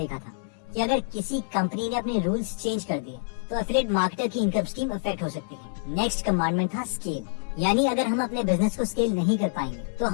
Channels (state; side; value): silent; right; digital silence